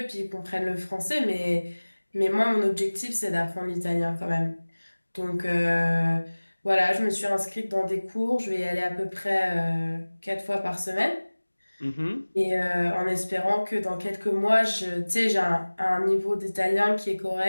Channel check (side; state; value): both; inverted; correlation -1.00